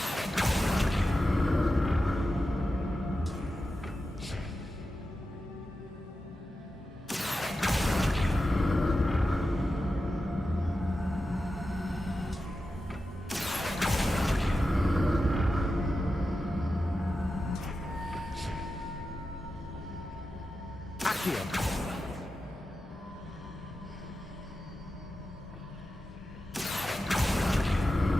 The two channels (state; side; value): normal; both; correlation 0.91